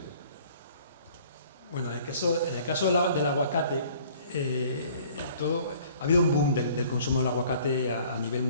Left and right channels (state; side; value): inverted; both; correlation -0.54